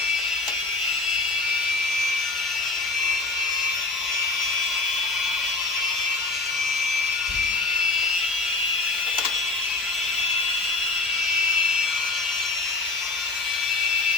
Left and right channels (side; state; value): right; quieter; 3.5 dB